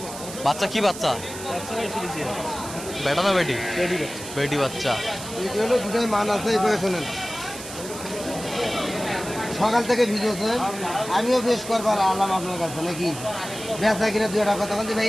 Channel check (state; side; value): noise; right; hiss, 11 dB below the sound